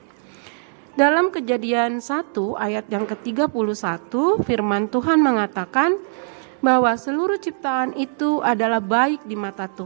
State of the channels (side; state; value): left; silent; digital silence